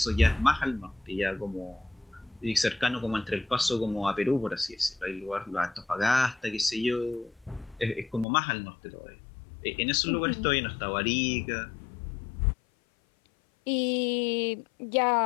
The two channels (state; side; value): drops out; right; at 8.2 s